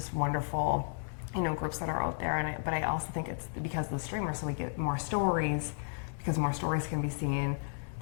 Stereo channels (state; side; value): silent; right; 56 dB below the other